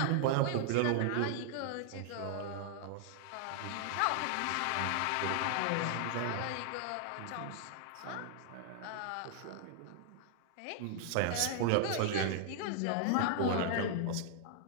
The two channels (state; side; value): different; both; correlation 0.00